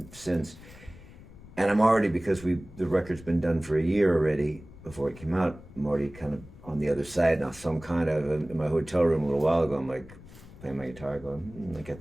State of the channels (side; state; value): left; noise; rumble, 19 dB below the sound